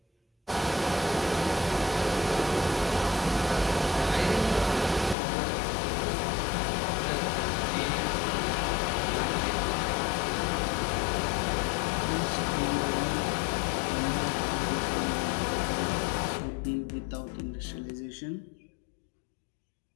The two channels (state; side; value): drops out; right; at 5.2 s